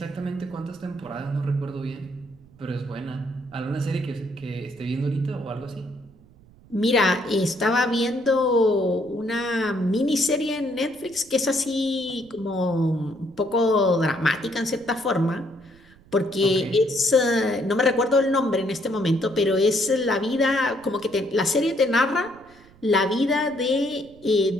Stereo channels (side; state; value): right; noise; rumble, 26 dB below the sound